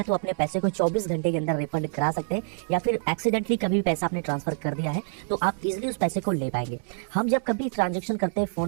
तो अपने पैसे को 24 घंटे के अंदर रिफंड करा सकते हैं, या फिर एक्सीडेंटली कभी भी पैसा आपने ट्रांसफर कर दिया है तो आप इजीली उस पैसे को ले पाएंगे। हम जब कभी ट्रांजेक्शन करते हैं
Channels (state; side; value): silent; left; 61 dB below the other